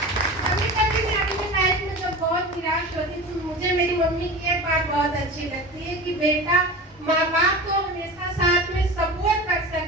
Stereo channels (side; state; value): both; normal; correlation 0.32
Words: कभी कभी मैं अपनी लाइफ में जब बहुत निराश होती तो मुझे मेरी मम्मी की एक बात बहुत अच्छी लगती है कि बेटा, माँ बाप तो हमेशा साथ में सपोर्ट कर